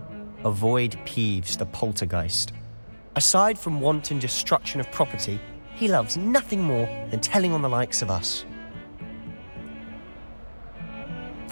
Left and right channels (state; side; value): inverted; both; correlation -1.00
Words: avoid Peeves the poltergeist. Aside from wanton destruction of property, he loves nothing more than telling on the likes of us.